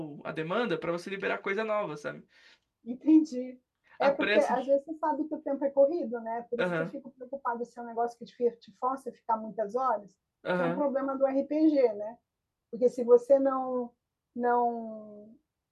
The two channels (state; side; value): identical; both; correlation 1.00